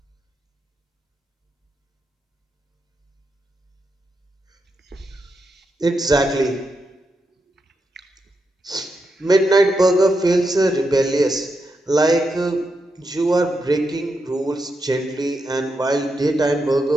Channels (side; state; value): both; normal; correlation 0.85